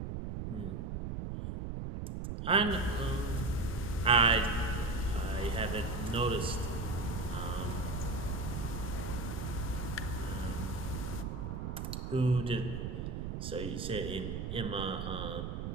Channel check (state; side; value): noise; right; rumble, 4 dB below the sound